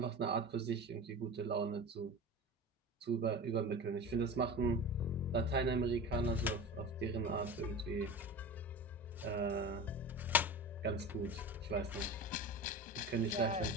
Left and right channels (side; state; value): both; normal; correlation 0.30